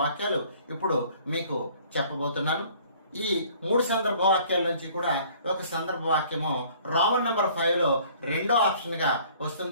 వాక్యాలు ఇప్పుడు మీకు చెప్పబోతున్నాను. ఈ 3 సందర్భ వాక్యాల నుంచి కూడా ఒక సందర్భ వాక్యము రోమన్ నంబర్ 5 లో రెండో ఆప్షన్ గా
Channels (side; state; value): both; inverted; correlation -0.55